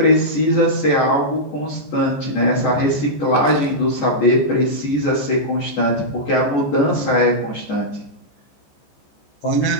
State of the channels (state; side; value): late; right; 14 ms